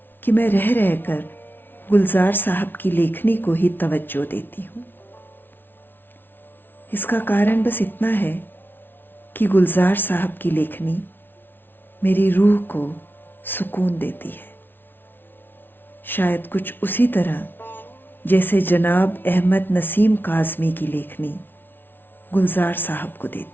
कि मैं रह रहकर गुलजार साहब की लेखनी को ही तवज्जो देती हूँ। इसका कारण बस इतना है कि गुलजार साहब की लेखनी मेरी रूह को सुकून देती है, शायद कुछ उसी तरह जैसे जनाब अहमद नसीम काज़मी की लेखनी गुलजार साहब को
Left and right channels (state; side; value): late; right; 0.099 ms